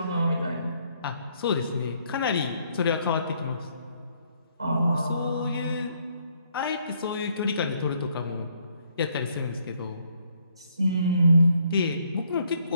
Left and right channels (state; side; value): inverted; both; correlation -0.69